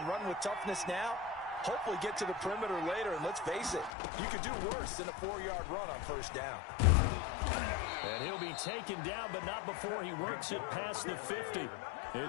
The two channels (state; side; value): drops out; right; at 3.9 s